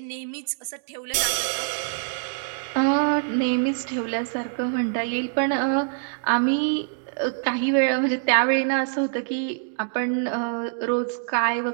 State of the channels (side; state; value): left; silent; digital silence